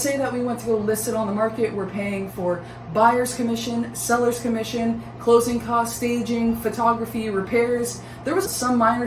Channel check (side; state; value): both; identical; correlation 1.00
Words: say that we went to go list it on the market. We're paying for buyer's commission, seller's commission, closing costs, staging, photography, repairs. There was some minor